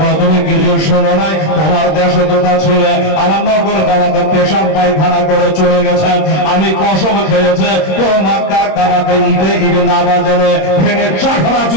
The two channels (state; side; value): late; right; 26 ms